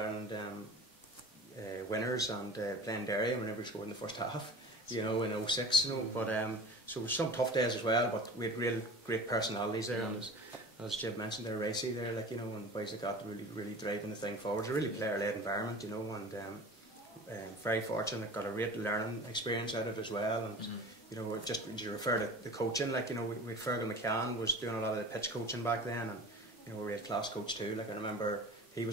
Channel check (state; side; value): normal; both; correlation 0.38